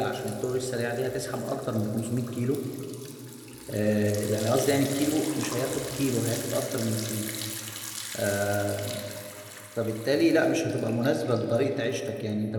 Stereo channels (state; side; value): identical; both; correlation 1.00